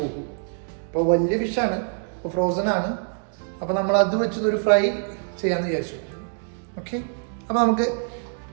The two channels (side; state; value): left; silent; 62 dB below the other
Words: അപ്പോൾ വലിയ ഫിഷാണ്, ഇപ്പോൾ ഫ്രോസൺ ആണ്. അപ്പോൾ നമ്മൾ അത് വെച്ചൊരു ഫ്രൈ ചെയ്യാമെന്ന് വിചാരിച്ചു. ഓക്കെ, അപ്പോൾ നമുക്ക്